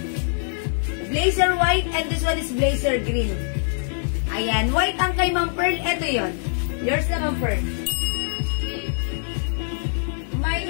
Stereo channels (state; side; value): silent; right; 63 dB below the other